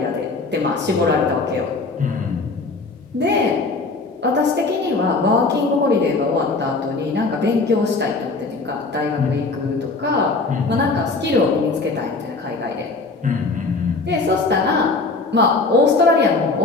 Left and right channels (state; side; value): quieter; right; 3.7 dB